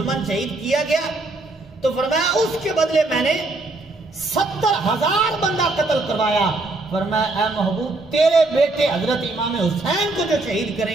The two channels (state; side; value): quieter; left; 3.0 dB